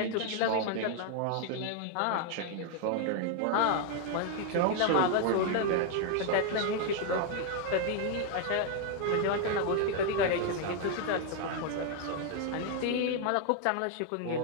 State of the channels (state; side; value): different; both; correlation 0.00